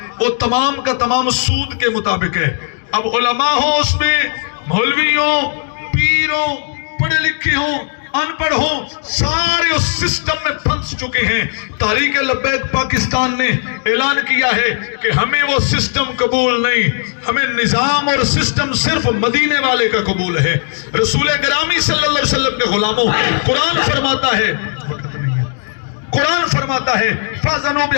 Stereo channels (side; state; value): right; silent; digital silence